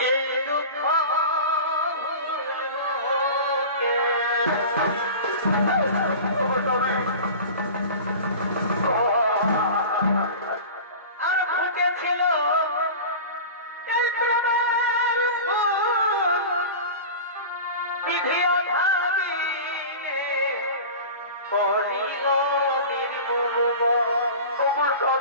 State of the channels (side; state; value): both; inverted; correlation -0.34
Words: এই দুঃখ আর ফুটেছিল এই প্রেমের ফুল, বিধিও ভাবিলে করিল নির্মূল।